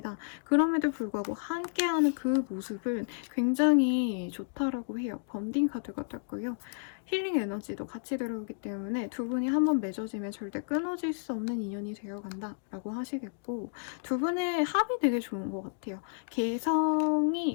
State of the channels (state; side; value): silent; right; digital silence